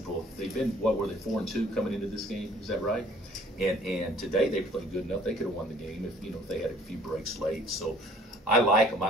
they've been, what were they, 4-2 coming into this game? Is that right? And today they played good enough. They could have won the game if they had a few breaks late. So I like them.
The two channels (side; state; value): both; normal; correlation 0.56